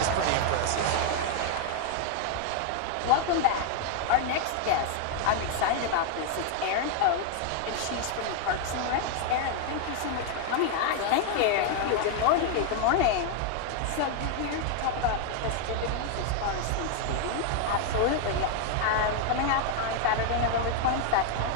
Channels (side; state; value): both; different; correlation 0.00